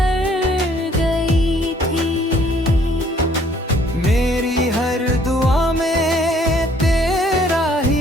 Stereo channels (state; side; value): normal; both; correlation 0.61